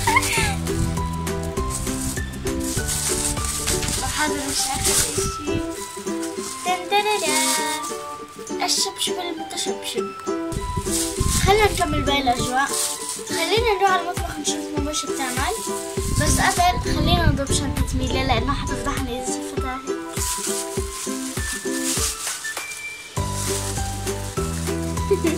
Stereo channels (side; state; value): both; identical; correlation 1.00